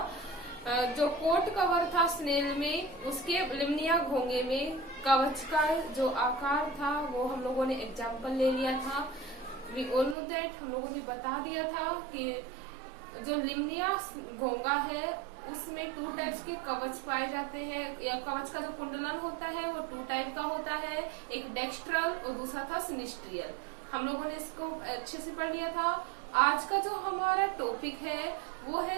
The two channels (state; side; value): drops out; left; at 10.2 s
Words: जो कोट कवर था स्नेल में, उसके लिम्निया घोंगे में कवच का जो आकार था वो हम लोगों ने एग्जाम्पल ले लिया था। वी ऑल नो दैट, हम लोगों ने बता दिया था कि जो लिम्निया घोंगा है उसमें 2 टाइप्स के कवच पाए जाते हैं, या कवच का जो कुंडलन होता है वो 2 टाइप का होता है, एक डेक्स्ट्रल और दूसरा था सिनिस्ट्रियल। हम लोगों ने इसको अच्छे से पढ़ लिया था। आज का जो हमारा टॉपिक है वो